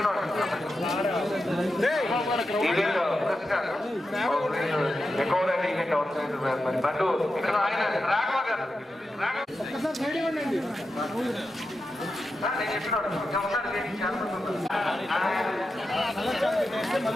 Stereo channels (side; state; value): both; normal; correlation 0.89